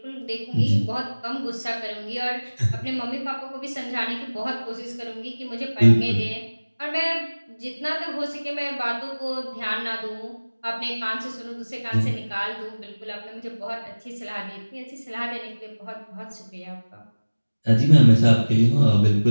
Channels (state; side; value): inverted; both; correlation -1.00